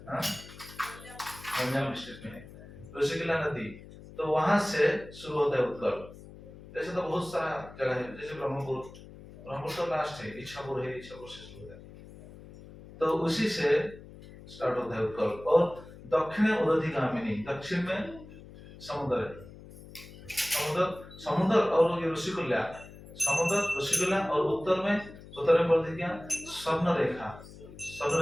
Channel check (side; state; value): left; noise; hum, 17 dB below the sound